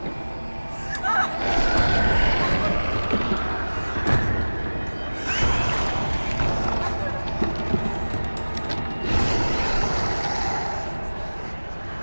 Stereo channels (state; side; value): inverted; both; correlation -1.00